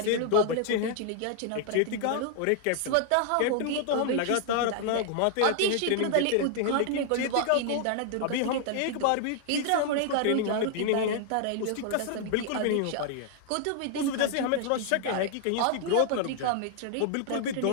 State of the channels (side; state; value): both; different; correlation 0.00